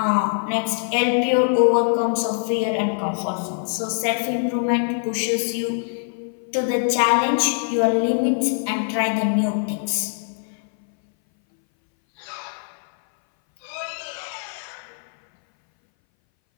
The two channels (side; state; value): right; silent; 60 dB below the other